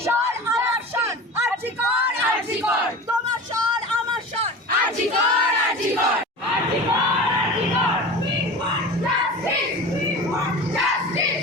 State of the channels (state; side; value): normal; both; correlation 0.34